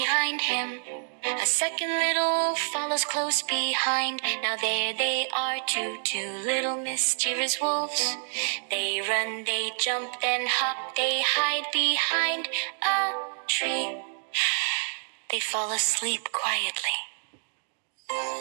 him. A second little wolf follows close behind. Now there they are, two little mischievous wolves. They run, they jump, then hop, they hide behind a tree. They fall asleep quietly.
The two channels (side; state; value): left; silent; 60 dB below the other